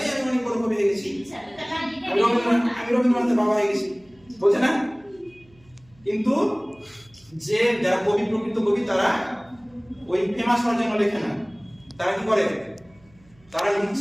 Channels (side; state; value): right; noise; hum, 29 dB below the sound